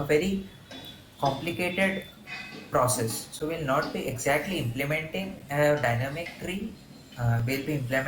very complicated process. So we'll not be exactly implementing a dynamic tree. We'll be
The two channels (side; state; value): both; identical; correlation 1.00